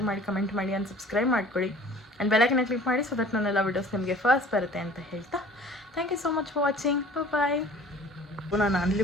ಮಾಡಿ, ಕಮೆಂಟ್ ಮಾಡಿ ಆ್ಯಂಡ್ ಸಬ್ಸ್ಕ್ರೈಬ್ ಮಾಡ್ಕೊಳ್ಳಿ. ಆ್ಯಂಡ್ ಬೆಲ್ಲೈಕನ್ನ ಕ್ಲಿಕ್ ಮಾಡಿ, ಸೊ ದಟ್ ನನ್ನೆಲ್ಲ ವೀಡಿಯೋಸ್ ನಿಮಗೆ ಫಸ್ಟ್ ಬರುತ್ತೆ ಅಂತ ಹೇಳ್ತಾ, thank you so much for watching. Bye. ನಾನು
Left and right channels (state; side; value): normal; both; correlation 0.48